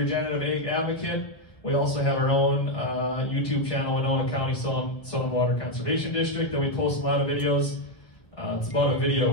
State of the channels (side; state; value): right; late; 1.1 ms